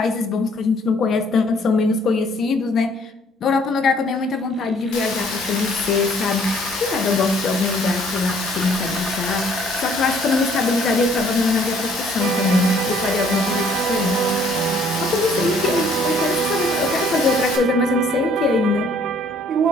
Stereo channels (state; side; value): normal; both; correlation 0.61